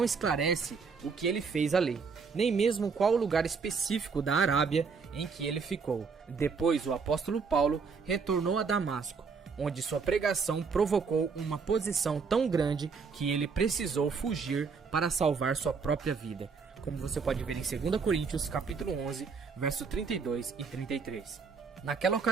esclarece o que ele fez ali, nem mesmo qual o lugar específico da Arábia em que ele ficou. Depois o apóstolo Paulo retornou a Damasco, onde sua pregação provocou uma posição tão grande que ele precisou fugir para salvar sua própria vida, como você pode ver em 2 Coríntios capítulo 11, verso 32 e 33. Naquela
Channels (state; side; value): quieter; left; 5.3 dB